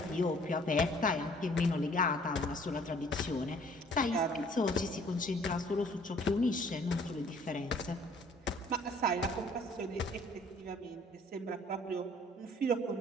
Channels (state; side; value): normal; both; correlation 0.57